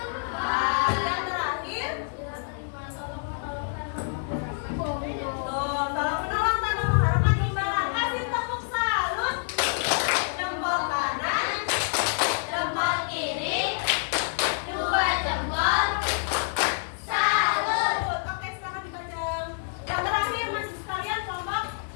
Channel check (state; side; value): silent; right; 60 dB below the other